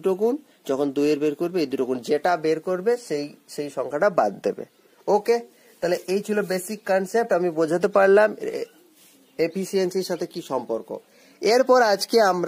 গুণ, যখন 2 বের করবে এই দুটো গুণ, যেটা বের করবে সেই সংখ্যাটা বাদ দেবে। ওকে, তাহলে এই ছিল বেসিক কনসেপ্ট। আমি বোঝাতে পারলাম এফিসিয়েন্সির সাথে কি সম্পর্ক। এরপর আজকে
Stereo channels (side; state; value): both; identical; correlation 1.00